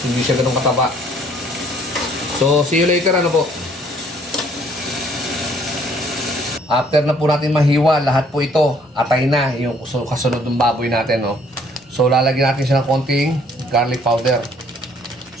Hindi siya ganun kataba. So, see you later, ano po? After na po natin mahiwa, lahat po ito, atay na yung kasunod ng baboy natin, no? So, lalagyan natin siya ng konting garlic powder.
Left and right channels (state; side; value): normal; both; correlation 0.61